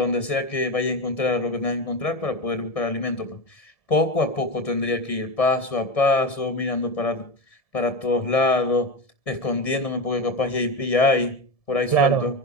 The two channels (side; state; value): right; late; 1.7 ms